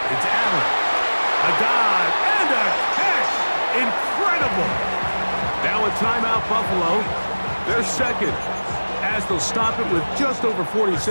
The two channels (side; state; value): both; inverted; correlation -1.00